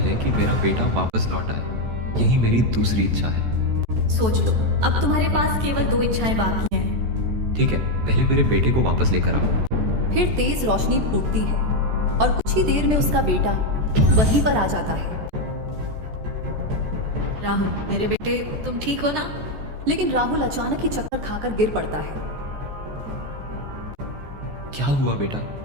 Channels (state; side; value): late; left; 14 ms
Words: कि मेरा बेटा वापस लौट आए। यही मेरी दूसरी इच्छा है। सोच लो, अब तुम्हारे पास केवल 2 इच्छाएं बाकी हैं। ठीक है, पहले मेरे बेटे को वापस लेकर आओ। फिर तेज रोशनी फूटती है और कुछ ही देर में उसका बेटा वहीं पर आ जाता है। राहुल, मेरे बेटे, तुम ठीक हो ना? लेकिन राहुल अचानक ही चक्कर खाकर गिर पड़ता है। क्या हुआ बेटा?